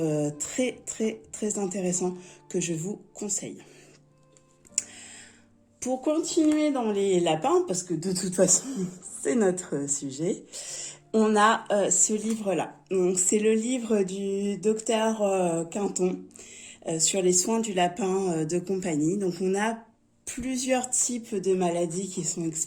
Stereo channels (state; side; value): identical; both; correlation 1.00